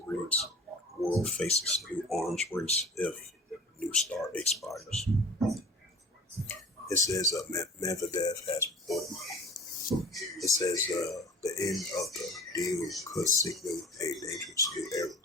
reads, World faces new arms race if New START expires. It says Medvedev has reported. It says the end of the deal could signal a dangerous new era.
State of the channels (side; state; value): both; normal; correlation 0.42